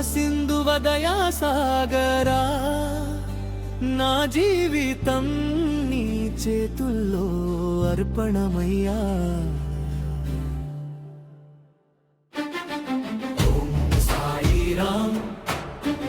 సింధువ దయా సాగరా నా జీవితం నీ చేతుల్లో అర్పణమయ్యా ఓం సాయిరాం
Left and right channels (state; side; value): identical; both; correlation 1.00